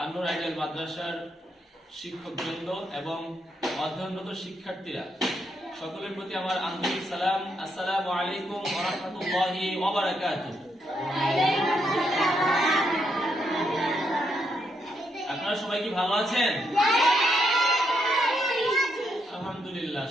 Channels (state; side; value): normal; both; correlation 0.78